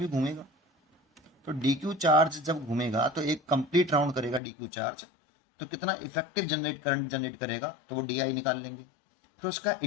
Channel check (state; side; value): drops out; right; at 4.4 s